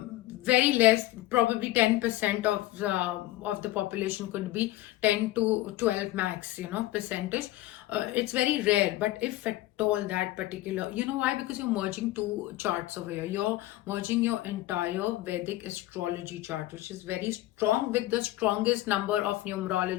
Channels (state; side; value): quieter; right; 16.7 dB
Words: less, probably 10% of the population, could be 10 to 12 max, percentage. it's very rare, but if at all that particular, you know why? Because you're merging two charts over here. You're merging your entire Vedic astrology chart, which is very strong, with the strongest number of